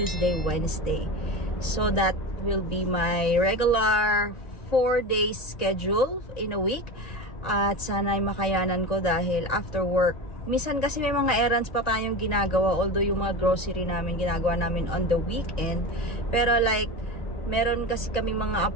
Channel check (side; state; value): right; late; 1.8 ms